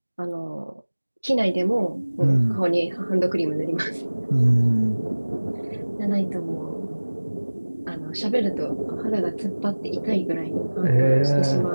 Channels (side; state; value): both; inverted; correlation -1.00